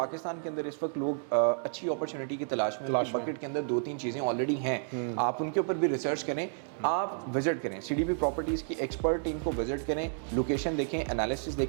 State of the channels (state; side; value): silent; left; digital silence